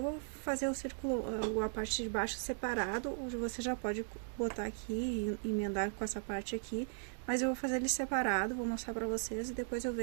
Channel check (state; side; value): silent; left; digital silence